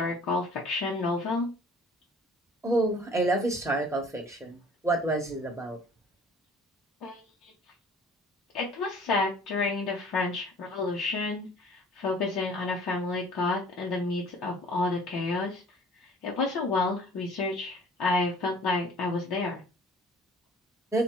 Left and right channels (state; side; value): normal; both; correlation 0.51